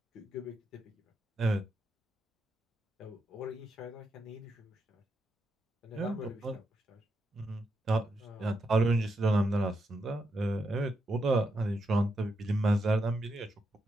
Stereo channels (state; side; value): normal; both; correlation 0.83